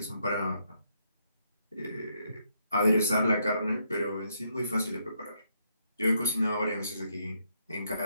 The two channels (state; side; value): inverted; both; correlation -0.75